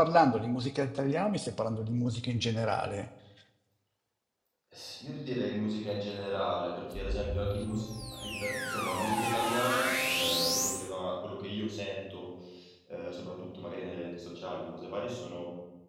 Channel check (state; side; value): identical; both; correlation 1.00